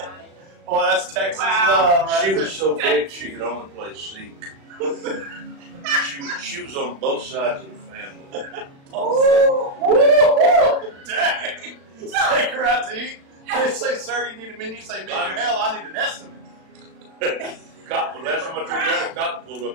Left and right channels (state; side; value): late; left; 36 ms